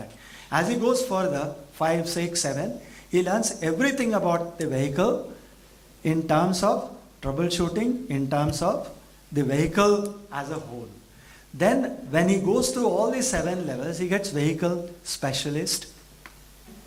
As he goes further, 5, 6, 7, he learns everything about the vehicle in terms of troubleshooting, in terms of the vehicle as a whole. Then when he goes through all these 7 levels, he gets vehicle specialist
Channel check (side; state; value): both; identical; correlation 1.00